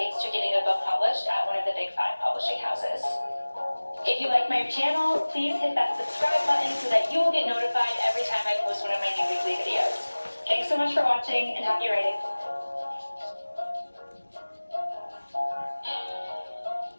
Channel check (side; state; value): both; inverted; correlation -1.00